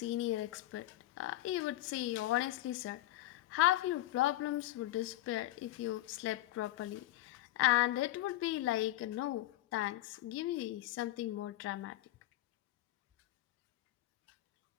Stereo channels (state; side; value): quieter; right; 15.7 dB